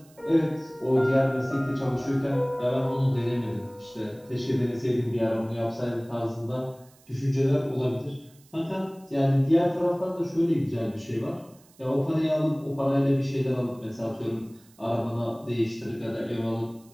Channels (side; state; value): right; noise; hiss, 28 dB below the sound